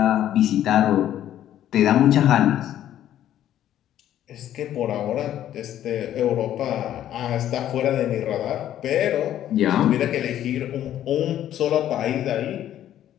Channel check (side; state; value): right; quieter; 11.7 dB